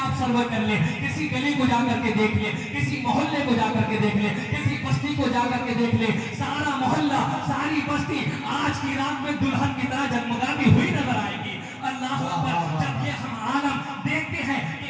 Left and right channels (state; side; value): identical; both; correlation 1.00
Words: سروے کر لیں، کسی گلی کو جا کر کے دیکھ لیں، کسی محلے کو جا کر کے دیکھ لیں، کسی بستی کو جا کر کے دیکھ لیں، سارا محلہ ساری بستی آج کی رات میں دلہن کی طرح جگمگاتی ہوئی نظر آئے گی. اللہ اکبر. جب یہ ہم عالم دیکھتے ہیں کہ